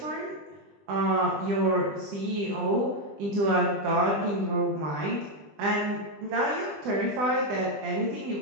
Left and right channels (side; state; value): left; late; 20 ms